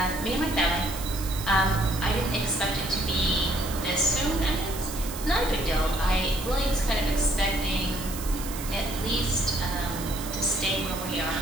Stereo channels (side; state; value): right; noise; hiss, 10 dB below the sound